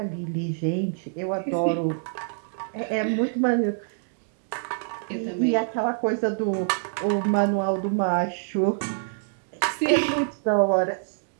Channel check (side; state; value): left; silent; digital silence